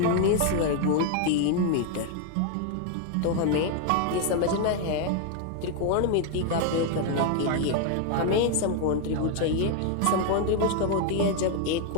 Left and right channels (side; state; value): both; different; correlation 0.01